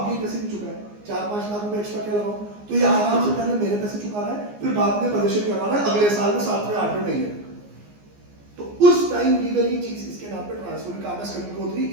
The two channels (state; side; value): late; left; 14 ms